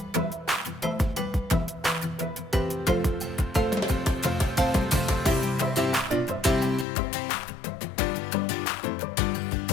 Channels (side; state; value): right; drops out; at 6.9 s